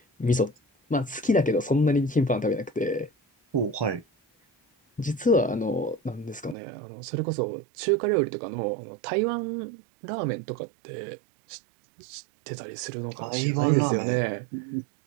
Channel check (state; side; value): drops out; left; at 6.6 s